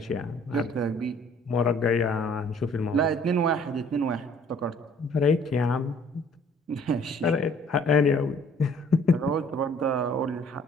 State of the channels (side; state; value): both; normal; correlation 0.57